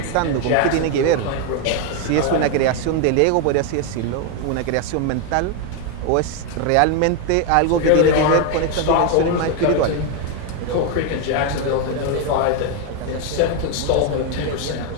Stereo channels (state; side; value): different; both; correlation 0.01